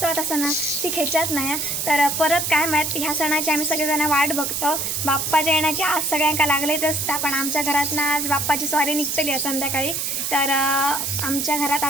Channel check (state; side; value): noise; right; hiss, 1 dB below the sound